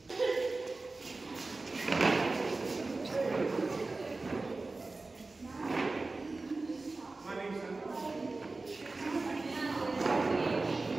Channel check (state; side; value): quieter; left; 3.4 dB